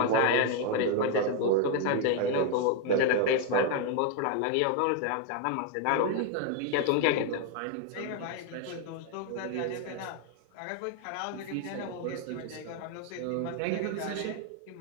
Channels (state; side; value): different; both; correlation 0.01